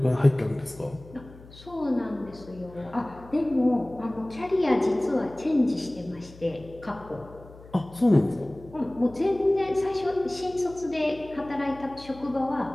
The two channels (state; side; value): noise; left; hum, 20 dB below the sound